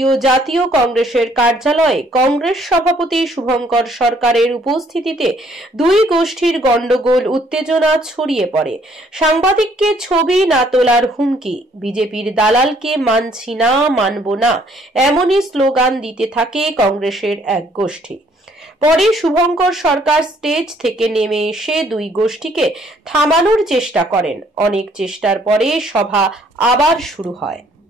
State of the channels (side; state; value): both; normal; correlation 0.64